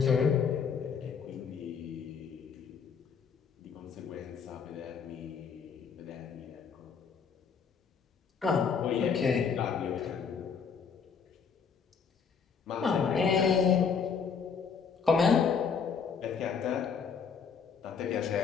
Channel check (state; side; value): quieter; right; 6.3 dB